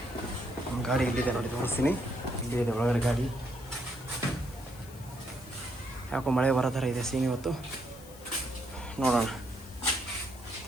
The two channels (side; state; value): left; noise; hiss, 20 dB below the sound